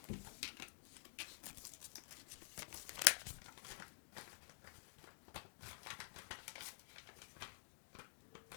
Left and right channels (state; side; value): silent; right; digital silence